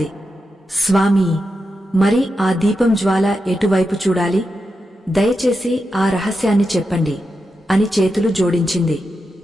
స్వామీ, మరి ఆ దీపం జ్వాల ఎటువైపు చూడాలి? దయచేసి ఆ రహస్యాన్ని చెప్పండి అని చేతులు జోడించింది.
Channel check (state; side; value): normal; both; correlation 0.88